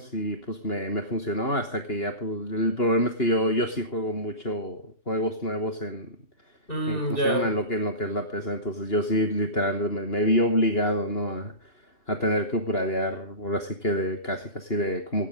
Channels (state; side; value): late; right; 2.9 ms